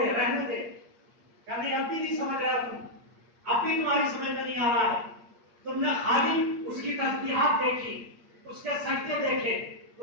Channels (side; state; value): left; late; 8.5 ms